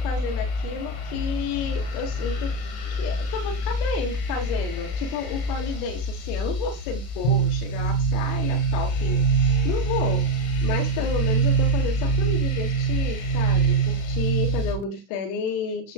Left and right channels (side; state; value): right; late; 33 ms